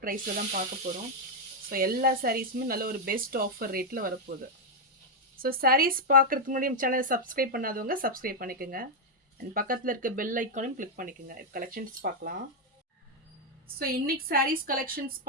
ப்ரைஸில் தான் பார்க்க போகிறோம். ஸோ எல்லா சாரீஸுமே நல்ல ஒரு பெஸ்ட் ஆஃபர் ரேட்டில் வரப்போகுது. ஸோ சாரீஸ் பார்க்குறதுக்கு முன்னாடி நம்ம சேனலை சப்ஸ்கிரைப் பண்ணாதவங்க சப்ஸ்கிரைப் பண்ணிக்கோங்க. அண்ட் பக்கத்தில் இருக்க பெல் ஐக்கானையும் கிளிக் பண்ணிக்கோங்க. கலெக்ஷன்ஸ் பார்க்கலாம். ஸோ இன்னைக்கு சாரீஸ் கலெக்ஷன்ஸ்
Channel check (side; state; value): both; normal; correlation 0.00